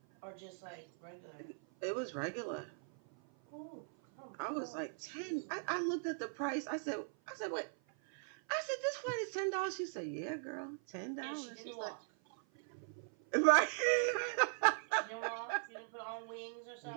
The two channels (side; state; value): left; silent; 51 dB below the other